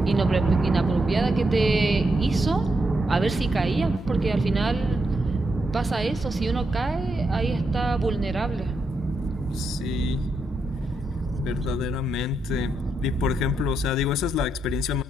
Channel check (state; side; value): normal; both; correlation 0.82